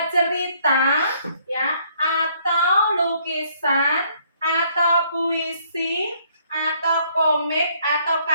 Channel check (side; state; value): both; inverted; correlation -0.65